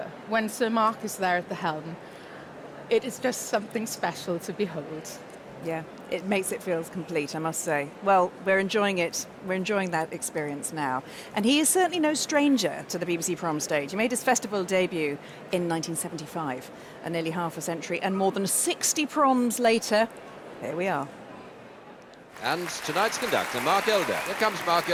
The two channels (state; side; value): identical; both; correlation 1.00